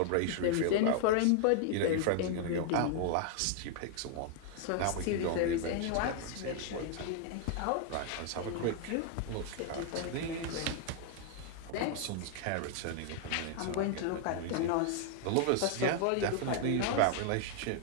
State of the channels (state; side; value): different; both; correlation 0.00